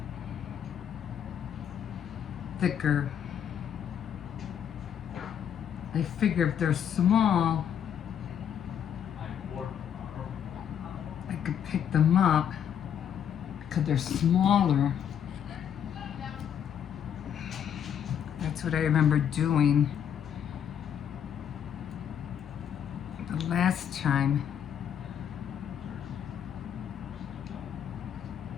thicker. I figure if they're small, I could pick them up because they're smaller. That's what I remember doing the last time.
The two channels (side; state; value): right; quieter; 8.8 dB